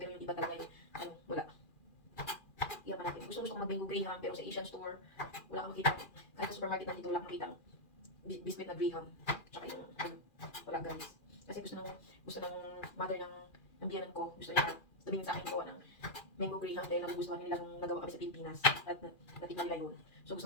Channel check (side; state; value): right; late; 2.4 ms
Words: yung iba talaga yung wala. Iyan pa natin. Gusto ko mag-mango graham, pero sa Asian store, wala kang makita. Kahit sa supermarket nandito, wala kang makita biscuit na graham. Tsaka yung, wala guys. Kasi gusto ng mother ng biyanan ko, gusto niya tumingin sa akin ko ng mango graham dahil nagugustuhan nilang nagawa kami sa Pilipinas. At natikman nila yun. So